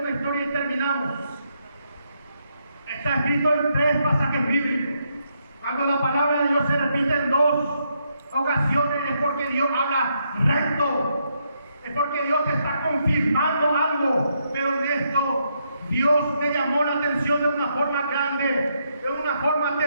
historia y terminamos. Está escrito en 3 pasajes bíblicos. Cuando la palabra de Dios se repite en 2 ocasiones es porque Dios habla recto, es porque Dios te está confirmando algo, pero en esto Dios me llamó la atención de una forma grande, de una forma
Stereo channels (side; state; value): both; inverted; correlation -0.78